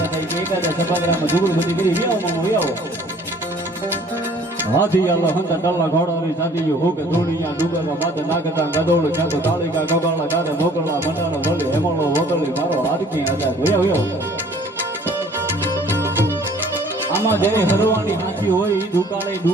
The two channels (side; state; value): both; normal; correlation 0.54